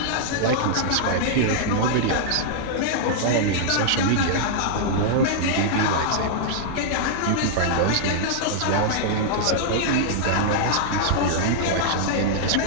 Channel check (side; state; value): both; different; correlation -0.01